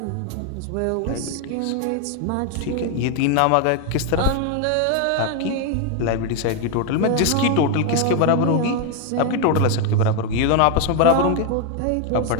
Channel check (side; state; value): both; different; correlation 0.01